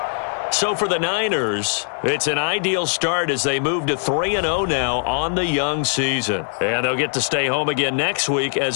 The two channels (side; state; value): right; silent; digital silence